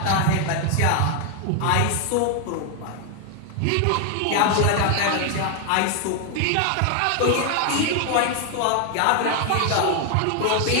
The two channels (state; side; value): different; both; correlation 0.00